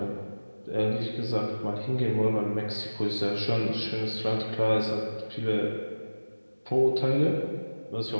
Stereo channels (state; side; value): inverted; both; correlation -1.00